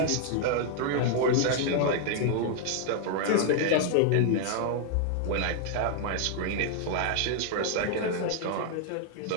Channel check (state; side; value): different; both; correlation 0.00